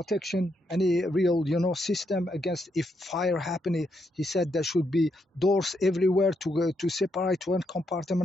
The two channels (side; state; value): both; normal; correlation 0.79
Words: any real, system against if fire happening. He said there should be doors everywhere to separate one